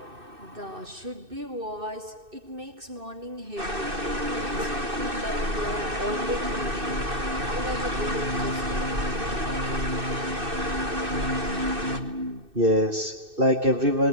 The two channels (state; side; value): late; left; 2.6 ms